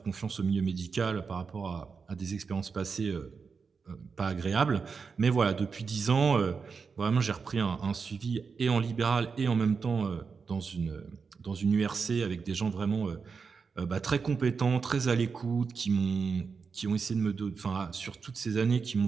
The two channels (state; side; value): quieter; left; 5.3 dB